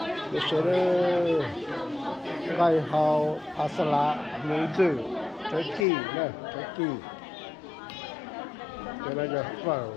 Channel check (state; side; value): drops out; right; at 5.9 s